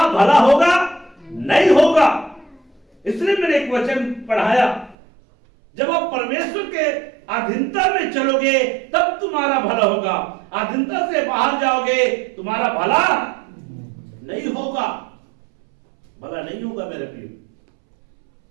भला होगा? नहीं होगा। इसलिए मैंने एक वचन पढ़ाया, जब आप परमेश्वर के अधीनता में चलोगे तब तुम्हारा भला होगा, अधीनता से बाहर जाओगे तुम्हारा भला नहीं होगा, भला नहीं होगा मेरे प्रिय।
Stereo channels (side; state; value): left; drops out; at 5.0 s